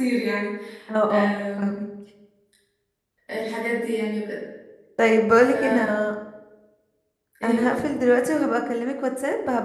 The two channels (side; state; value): both; identical; correlation 1.00